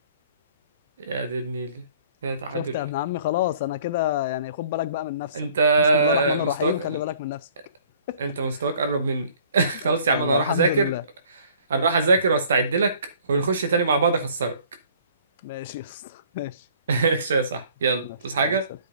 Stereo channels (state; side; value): inverted; both; correlation -0.55